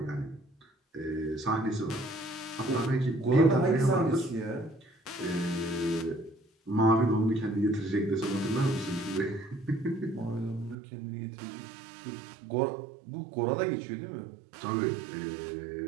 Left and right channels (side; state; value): left; drops out; at 10.8 s